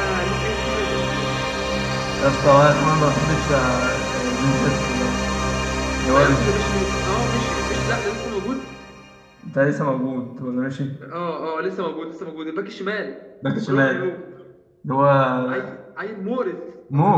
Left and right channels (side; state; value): both; identical; correlation 1.00